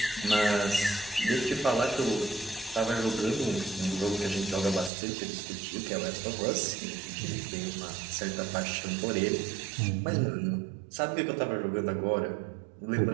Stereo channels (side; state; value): left; drops out; at 4.9 s